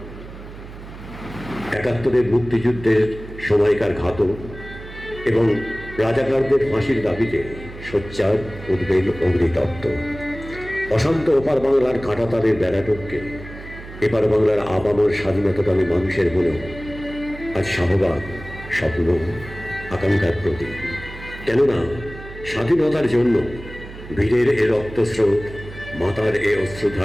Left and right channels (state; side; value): noise; right; hum, 14 dB below the sound